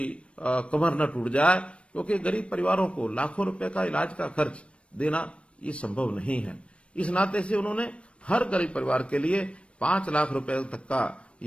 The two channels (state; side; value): late; right; 0.060 ms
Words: कमर न टूट जाए, क्योंकि गरीब परिवारों को लाखों रुपए का इलाज का खर्च देना ये संभव नहीं है। इस नाते से उन्होंने हर गरीब परिवार के लिए 5 लाख रुपए तक का